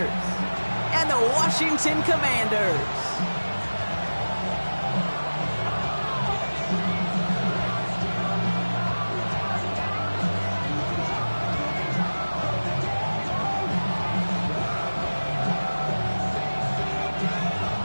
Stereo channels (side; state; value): both; inverted; correlation -1.00